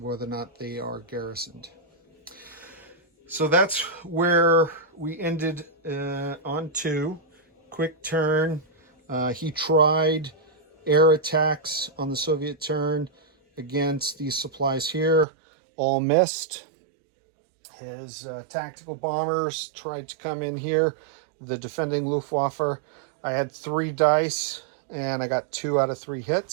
whether or not they are garrisoned. So that's where we ended on 2. Quick turn. He tried air attacks on the Soviet turn against these supplies here. All missed. His tactical bombers tried to come in here. The defending Luftwaffe. I had 3 dice and I got 2 out of 3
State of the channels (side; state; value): left; drops out; at 15.2 s